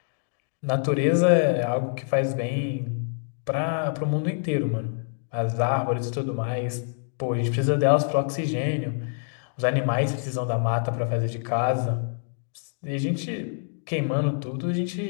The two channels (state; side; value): silent; right; digital silence